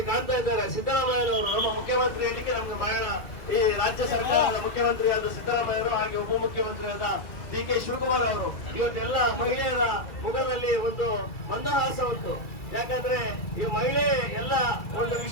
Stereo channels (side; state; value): right; late; 2.3 ms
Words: ಕಾಣ್ತಾ ಇದ್ದಾರೆ ಸಿದ್ದರಾಮಯ್ಯನವರು, ನಮ್ಮ ಮುಖ್ಯಮಂತ್ರಿ ಇಲ್ಲಿಗೆ ನಮ್ಗೆ ಬಹಳ ಈ ರಾಜ್ಯ ಸರ್ಕಾರದ ಮುಖ್ಯಮಂತ್ರಿಯಾದ ಸಿದ್ದರಾಮಯ್ಯರು, ಹಾಗೆ ಉಪಮುಖ್ಯಮಂತ್ರಿಯಾದ ಡಿ ಕೆ ಶಿವಕುಮಾರ್ ಅವರು. ಇವತ್ತೆಲ್ಲ ಮಹಿಳೆಯರ ಮುಖದಲ್ಲಿ ಒಂದು ಮಂದಹಾಸ ಉಂಟು. ಯಾಕಂದ್ರೆ ಈ ಮಹಿಳೆ ಎಲ್ಲ ಒಂದು